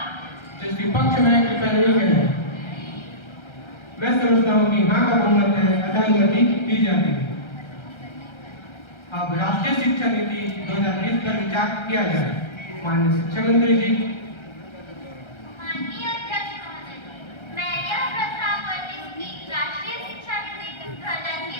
जिसके पक्ष में है कृपया नहीं करें। मैं समझता हूँ कि हाँ का बहुमत है, अतः अनुमति दी जाती है। अब राष्ट्रीय शिक्षा नीति 2020 पर विचार किया जाए। माननीय शिक्षा मंत्री जी। माननीय अध्यक्ष महोदय, मैं यह प्रस्ताव करती हूँ कि राष्ट्रीय शिक्षा नीति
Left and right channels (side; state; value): right; late; 1.3 ms